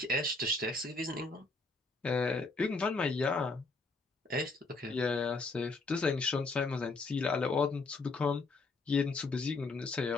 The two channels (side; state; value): right; quieter; 3.5 dB